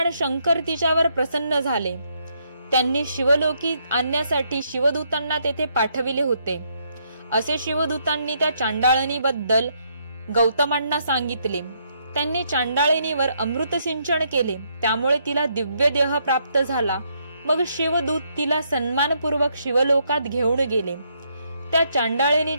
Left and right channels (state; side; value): inverted; both; correlation -0.74